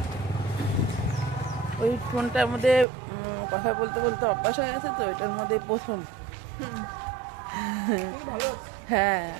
ওই ফোনটার মধ্যে কথা বলতে বলতে অভ্যাস হয়ে গেছে তো, এটার মধ্যে প্রথম। হ্যাঁ,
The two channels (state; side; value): drops out; left; at 2.9 s